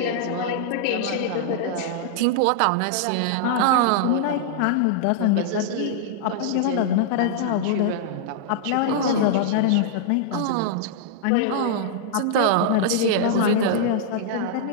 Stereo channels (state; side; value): different; both; correlation -0.01